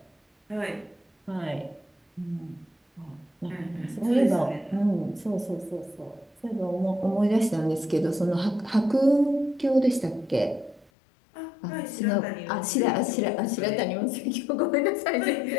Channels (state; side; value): drops out; right; at 10.9 s